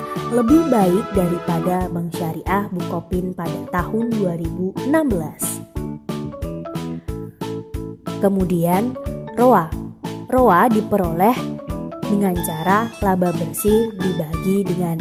lebih baik daripada Bank Syariah Bukopin pada tahun 2016. Kemudian ROA. ROA diperoleh dengan cara laba bersih dibagi dengan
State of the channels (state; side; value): identical; both; correlation 1.00